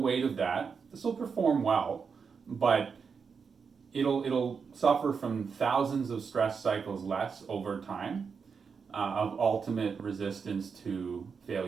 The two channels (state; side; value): quieter; left; 5.8 dB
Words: of that. This will perform well, but it'll suffer from thousands of stress cycles less over time of ultimate resistance to